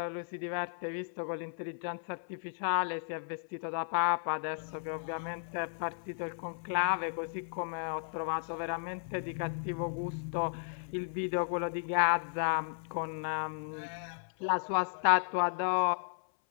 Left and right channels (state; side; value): silent; right; 55 dB below the other